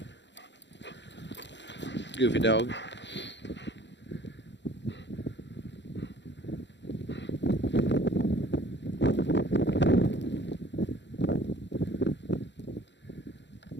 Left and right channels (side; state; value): right; late; 0.52 ms